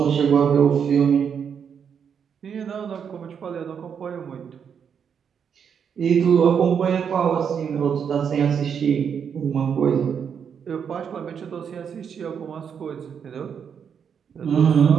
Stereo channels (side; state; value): left; quieter; 7.3 dB